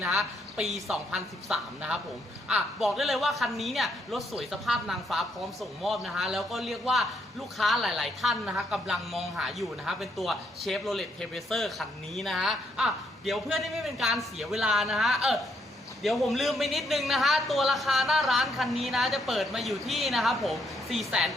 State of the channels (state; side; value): normal; both; correlation 0.74